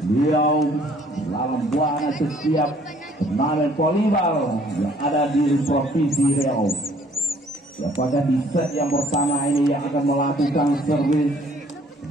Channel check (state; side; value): normal; both; correlation 0.60